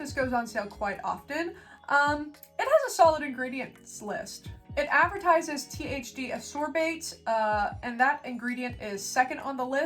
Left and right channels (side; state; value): both; identical; correlation 1.00